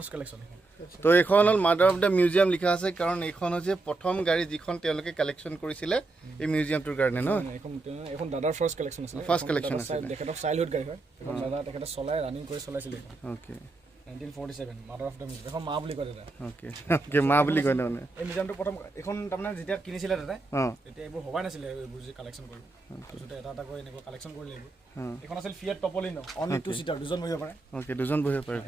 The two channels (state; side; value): quieter; left; 3.4 dB